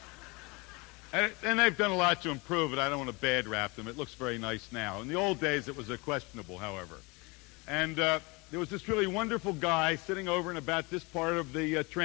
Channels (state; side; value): quieter; right; 26.7 dB